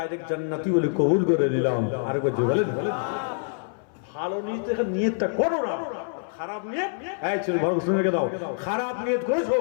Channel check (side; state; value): right; silent; 61 dB below the other